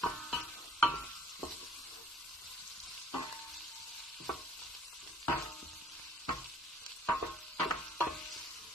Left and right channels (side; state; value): both; normal; correlation 0.58